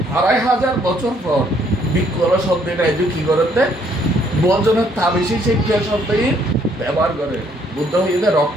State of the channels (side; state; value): both; normal; correlation 0.66